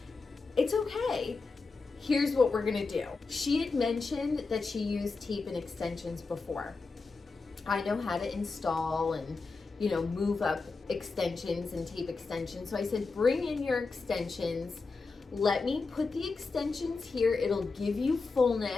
it's okay. Here's what we're gonna do. She had mentioned that she used tape and extensions before. I know how to install and, you know, move up extensions and tape extensions. So I said, bring in your extensions. Let me put the extensions here. It'll give you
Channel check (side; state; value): right; quieter; 4.1 dB